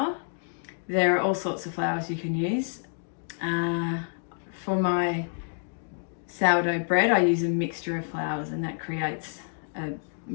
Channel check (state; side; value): silent; right; 58 dB below the other